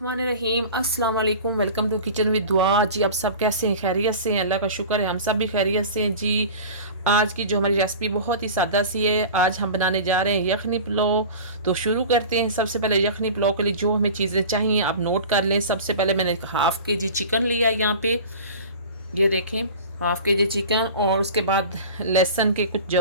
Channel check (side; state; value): both; inverted; correlation -0.36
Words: अस्सलाम वालेकुम। वेलकम टू किचन विद दुआ। जी आप सब कैसे हैं? खैरियत से हैं? अल्लाह का शुक्र है हम सब भी खैरियत से हैं। जी आज की जो हमारी रेसिपी बहुत ही सादा सी है। आज हम बनाने जा रहे हैं यखनी पुलाव। तो शुरू करते हैं। सबसे पहले यखनी पुलाव के लिए जो हमें चीज़ें चाहिए आप नोट कर लें। सबसे पहले मैंने हाफ़ के जी चिकन लिया यहाँ पे, ये देखें हाफ़ के जी चिकन, और उसके बाद लहसुन के कुछ